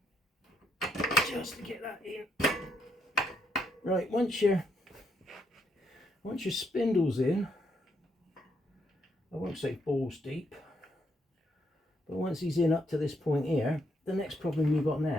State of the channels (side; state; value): both; normal; correlation 0.76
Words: just to get that in. Right, once your spindle's in, I won't say balls deep, but once he's in up to this point here, the next problem you've got